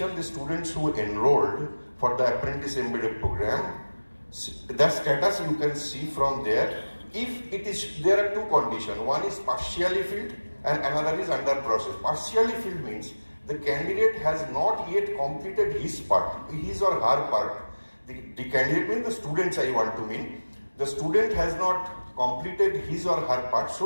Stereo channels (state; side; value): inverted; both; correlation -1.00